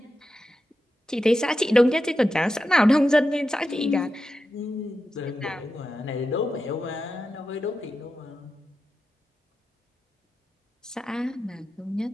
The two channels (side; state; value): both; normal; correlation 0.90